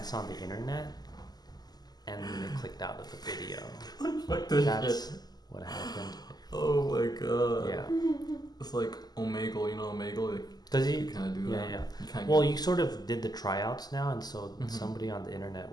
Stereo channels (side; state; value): right; late; 0.20 ms